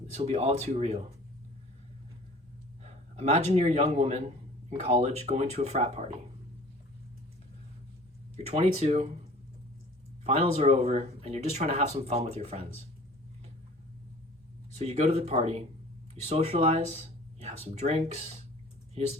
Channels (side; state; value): both; normal; correlation 0.47